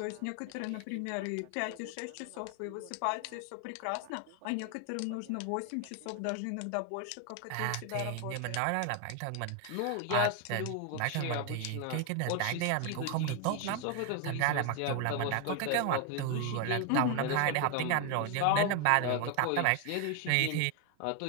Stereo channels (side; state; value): both; different; correlation 0.01